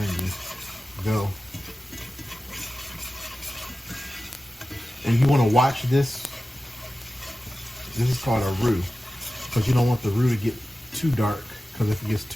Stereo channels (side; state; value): both; normal; correlation 0.94